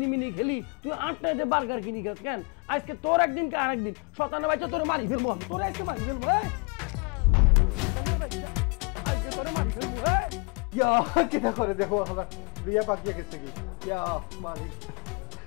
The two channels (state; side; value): quieter; right; 31.3 dB